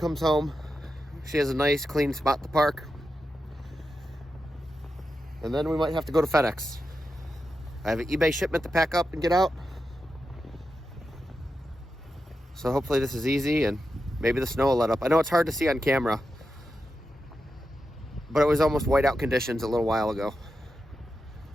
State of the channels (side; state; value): both; normal; correlation 0.89